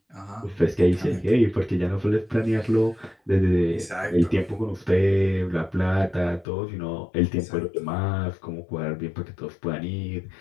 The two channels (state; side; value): drops out; right; at 6.5 s